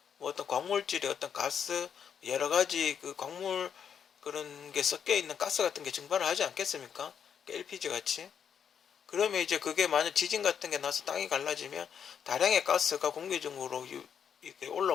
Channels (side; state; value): right; quieter; 7.7 dB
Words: 뭐 어떤 광물질의 어떤 가스, 여러 가지 그 광물 그런 게 섞여 있는 가스 같은 게 증발을 하지 않겠습니까? LPG 같이. 그러면 이제 그게 만약 지진 같은 게 나서 땅이 갈라지면 다량의 가스가 공기 중으로 이렇게